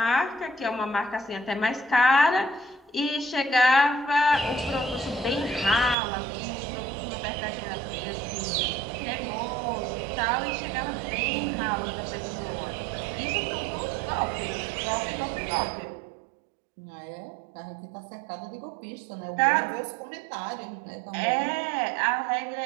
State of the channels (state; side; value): drops out; left; at 6.0 s